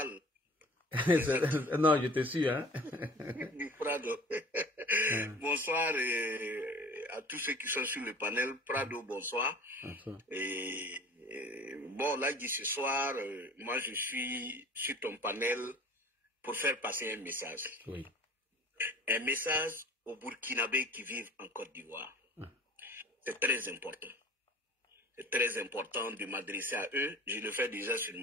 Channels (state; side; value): normal; both; correlation 0.44